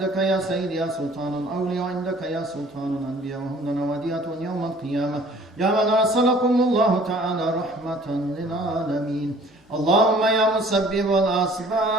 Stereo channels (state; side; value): normal; both; correlation 0.53